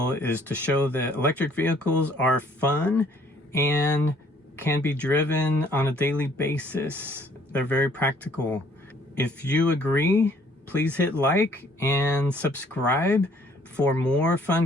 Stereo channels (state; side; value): normal; both; correlation 0.61